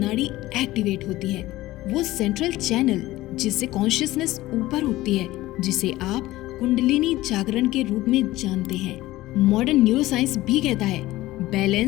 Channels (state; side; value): quieter; right; 17.1 dB